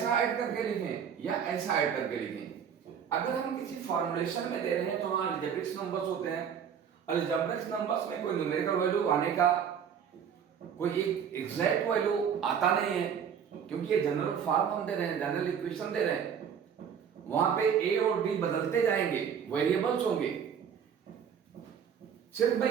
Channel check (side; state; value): left; quieter; 7.8 dB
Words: ऐड करके लिखें या ऐसा ऐड करके लिखें, अगर हम किसी फॉर्मुलेशन में दे रहे हैं तो वहां अलजेब्रिक नंबर्स होते हैं। अलजेब्रिक नंबर्स में कोई न्यूमेरिकल वैल्यू आने का कोई एक एग्जैक्ट वैल्यू आता नहीं है, क्योंकि ये जनरल फॉर्म हम दे रहे हैं, जनरल इक्वेशन दे रहे हैं। वहां पे a और d बदलते जाएंगे, वेरिएबल्स होंगे। सिर्फ मैं